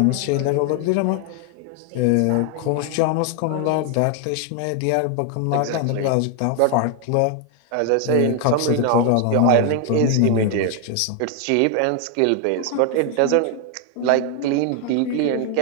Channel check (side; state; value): both; different; correlation 0.01